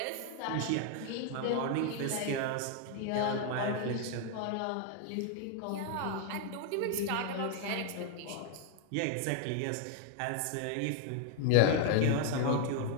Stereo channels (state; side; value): different; both; correlation 0.00